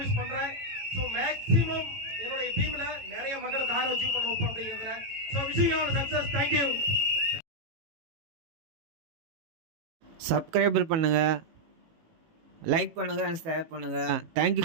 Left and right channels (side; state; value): left; late; 18 ms